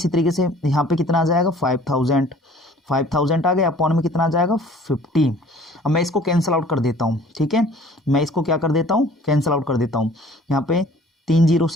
तरीके से यहाँ पे कितना आ जाएगा 5,000 आ गया, अपॉन में कितना आ जाएगा 50। अब मैं इसको कैंसिल आउट कर देता हूँ, ठीक है, मैं इसको क्या कर देता हूँ, कैंसिल आउट कर देता हूँ। यहाँ पे 3 0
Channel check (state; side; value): normal; both; correlation 0.51